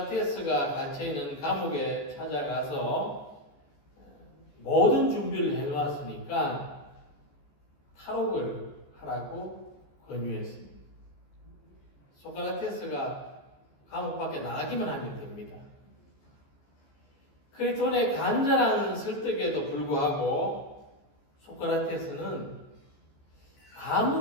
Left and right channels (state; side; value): late; right; 14 ms